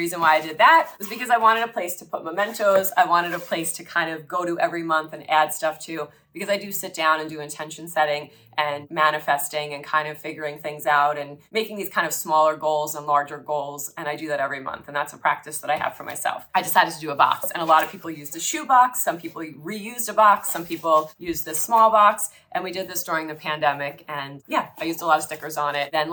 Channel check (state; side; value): identical; both; correlation 1.00